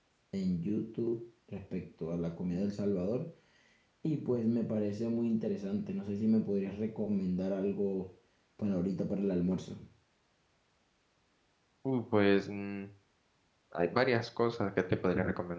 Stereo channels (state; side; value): identical; both; correlation 1.00